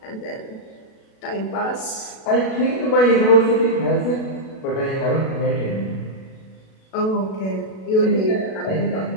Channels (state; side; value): late; right; 37 ms